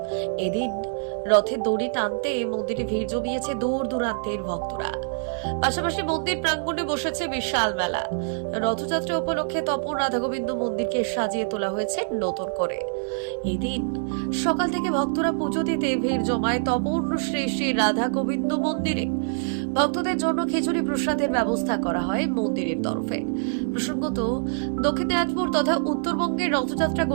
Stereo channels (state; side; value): silent; left; 61 dB below the other